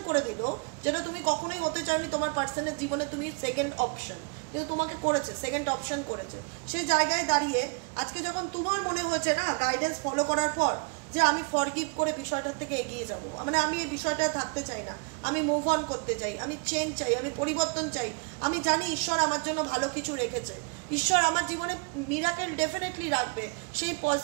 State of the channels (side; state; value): left; quieter; 34.0 dB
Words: করে দিল যেটা তুমি কখনোই হতে চাওনি তোমার পার্সনের জীবনে, তুমি সেকেন্ড অপশন, কিন্তু তোমাকে করেছে, সেকেন্ড অপশন করেছে। সে জায়গায় দাঁড়িয়ে আজকে যখন তোমার মনে হয়েছে না গাইডেন্স ফলো করার পর যে আমি ফরগিভ করে বিষয়টার থেকে এগিয়ে যাব, মানে আমি এই বিষয়টা থাকতে চাই না, আমি মুভ অন করতে চাই, আমি চেঞ্জ চাই, আমি পরিবর্তন চাই, আমি জানি ঈশ্বর আমার জন্য ভালো কিছু রেখেছে, ঈশ্বর আমার জীবনে মিরাকেল ডেফিনেটলি রাখবে, সেই